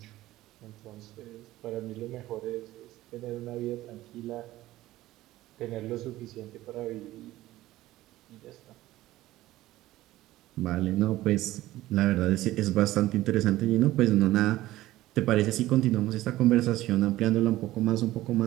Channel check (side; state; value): left; quieter; 16.1 dB